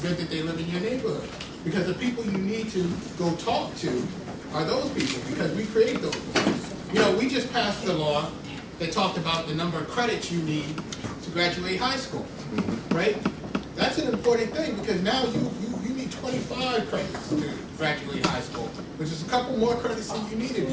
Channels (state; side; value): identical; both; correlation 1.00